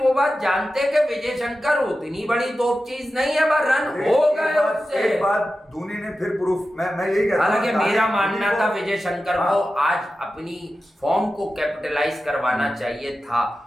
बात जानते कि विजय शंकर उतनी बड़ी तोप चीज नहीं है, पर रन हो गए उससे। एक बात धोनी ने फिर प्रूफ, मैं यही कहता हूं, हालांकि मेरा मानना था विजय शंकर को आज अपनी फॉर्म को कैपिटलाइज करवाना चाहिए था,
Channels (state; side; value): normal; both; correlation 0.93